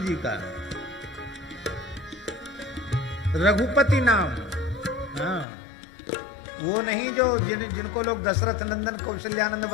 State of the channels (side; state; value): right; drops out; at 5.5 s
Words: का। रघुपति नाम, हाँ, वो नहीं जो जिनको लोग दशरथ नंदन कौशल्यानंद